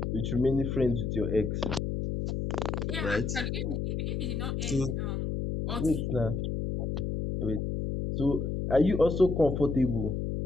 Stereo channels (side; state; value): left; noise; hum, 2 dB below the sound